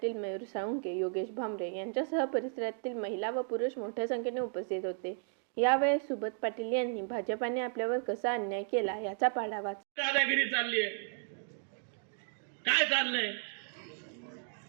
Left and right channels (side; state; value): left; silent; 55 dB below the other